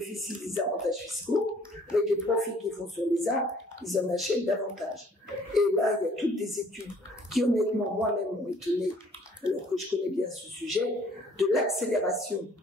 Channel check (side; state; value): both; normal; correlation 0.58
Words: des avantages fiscaux. Avec les profits qu'ils font sur les uns, ils en achètent davantage. Et là, il y a toutes des études qui, honnêtement, moi-même m'ont étonné, alors que je connais bien ce sujet, de l'accélération